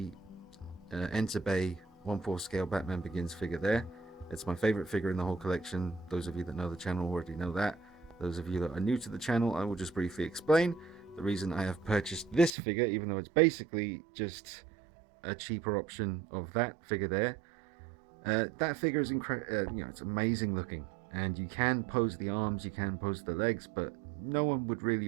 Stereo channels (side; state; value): left; drops out; at 12.5 s